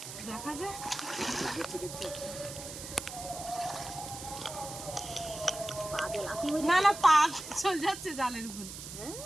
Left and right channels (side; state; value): right; noise; hiss, 10 dB below the sound